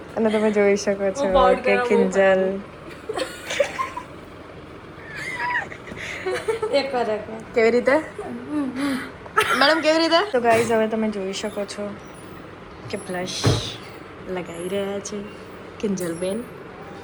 અને તમે જોઈ શકો છો કે કિંજલ કેવી રીતે મેડમ કેવી રીતે. તો ગાઈઝ, હવે તમે જોઈ શકો છો કે બ્લશ લગાવી રહ્યા છે કિંજલબેન.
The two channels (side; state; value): both; identical; correlation 1.00